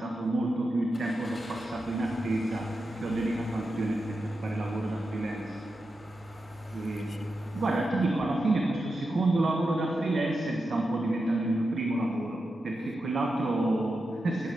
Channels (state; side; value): normal; both; correlation 0.89